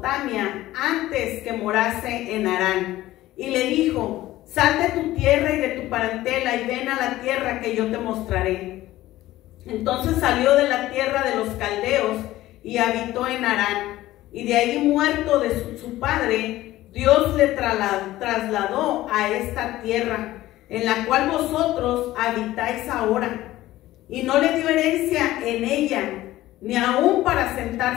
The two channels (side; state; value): right; quieter; 15.8 dB